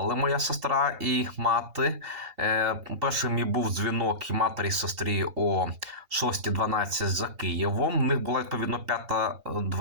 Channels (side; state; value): left; late; 2.8 ms